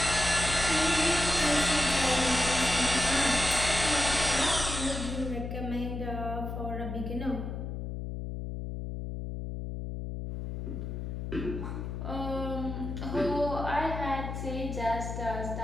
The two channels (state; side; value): noise; left; hum, 5 dB below the sound